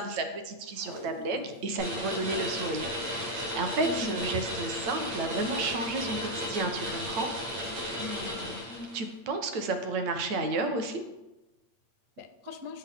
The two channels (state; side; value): late; left; 8.6 ms